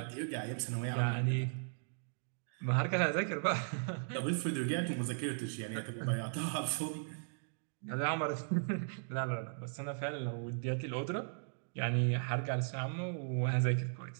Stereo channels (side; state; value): left; silent; digital silence